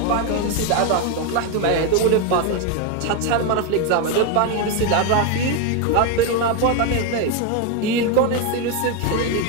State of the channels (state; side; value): different; both; correlation 0.02